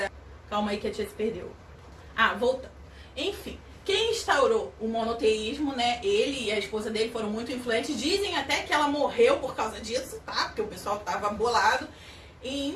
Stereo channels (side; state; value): both; identical; correlation 1.00